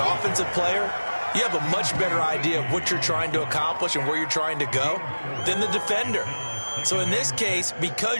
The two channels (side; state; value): both; inverted; correlation -1.00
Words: player, you have a much better idea of what you're trying to accomplish and where you're trying to go than the defender. So in this case,